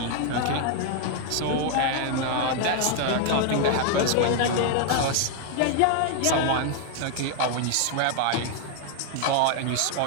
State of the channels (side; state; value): both; different; correlation 0.00